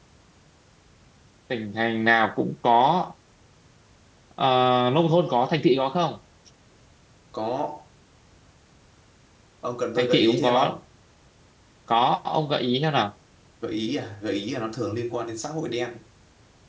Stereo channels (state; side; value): identical; both; correlation 1.00